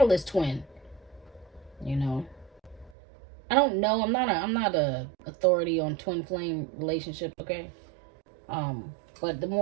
twin. I don't know. I'm not a authority on twin flame relationships, okay? But the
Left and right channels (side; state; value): left; drops out; at 3.0 s